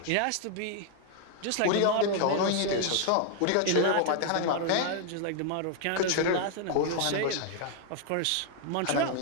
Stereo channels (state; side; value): different; both; correlation 0.00